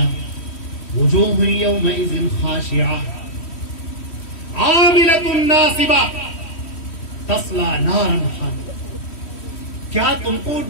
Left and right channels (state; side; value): late; right; 3.1 ms